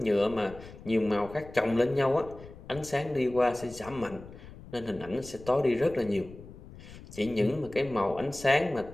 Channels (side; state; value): left; noise; rumble, 17 dB below the sound